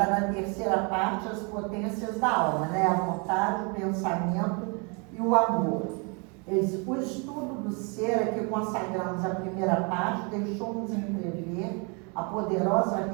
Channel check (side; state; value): left; quieter; 33.5 dB